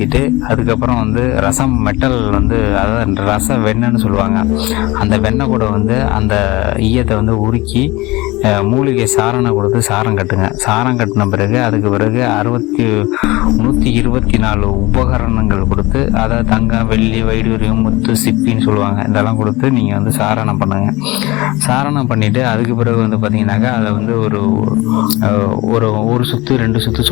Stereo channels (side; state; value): right; quieter; 21.3 dB